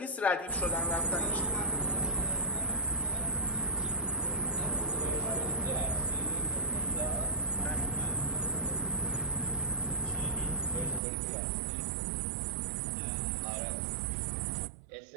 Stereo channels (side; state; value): left; drops out; at 11.0 s